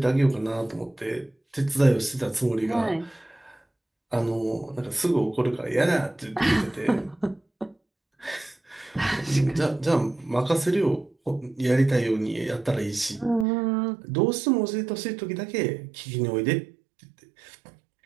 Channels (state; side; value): drops out; left; at 13.5 s